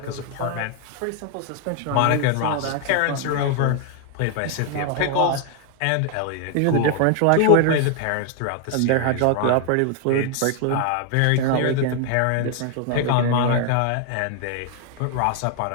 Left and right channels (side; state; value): both; different; correlation 0.00